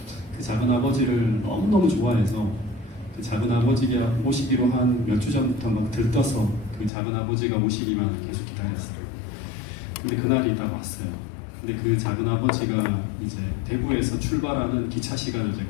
그 작은 아버지를 너무너무 좋아해서 그 작은 아버지가 오시기로 한 몇 주 전부터 막 들떠서 그 작은 아버지가 오시기만 계속 기다렸어요. 근데 그날이 딱 왔어요. 근데 그 작은 아버지가 이제 대구에서 출발하는 기차 시간을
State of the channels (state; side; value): drops out; right; at 6.9 s